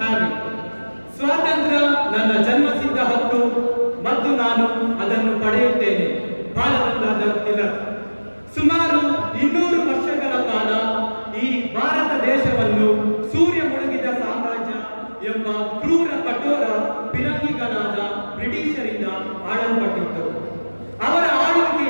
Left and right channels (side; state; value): both; inverted; correlation -1.00